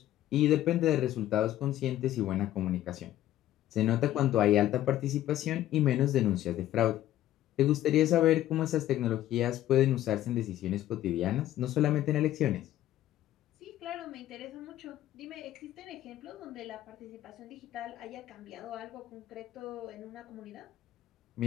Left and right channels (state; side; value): quieter; right; 13.4 dB